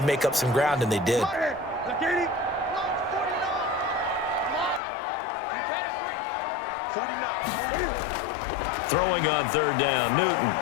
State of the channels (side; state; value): right; drops out; at 4.8 s